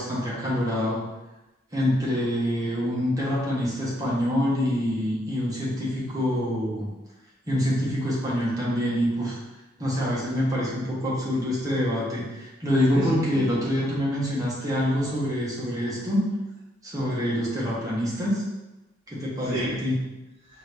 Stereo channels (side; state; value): both; normal; correlation 0.75